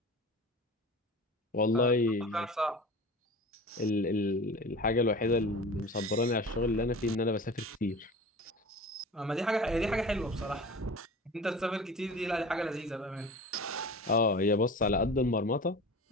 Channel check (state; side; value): normal; both; correlation 0.36